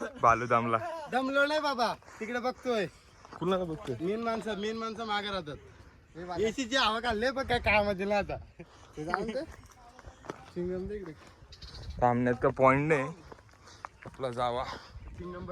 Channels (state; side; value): identical; both; correlation 1.00